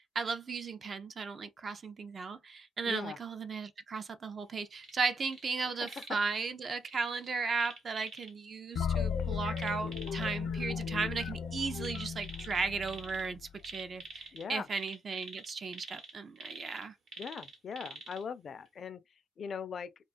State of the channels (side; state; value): both; normal; correlation 0.78